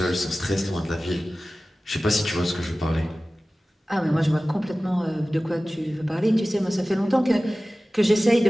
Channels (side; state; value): both; normal; correlation 0.96